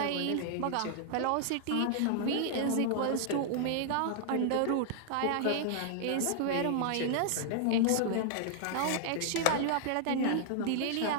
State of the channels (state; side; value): different; both; correlation -0.01